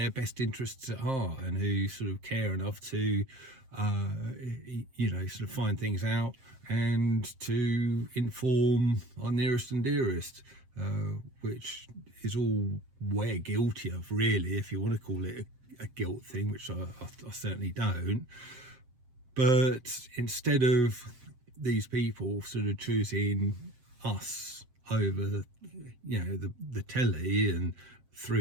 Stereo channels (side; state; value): left; late; 7.6 ms